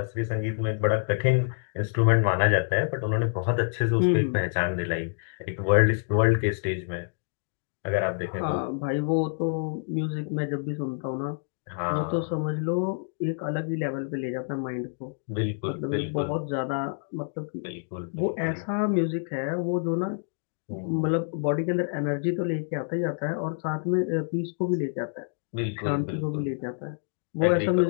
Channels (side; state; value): right; silent; digital silence